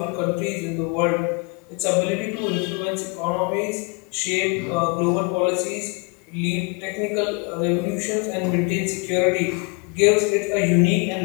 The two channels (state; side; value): quieter; right; 31.0 dB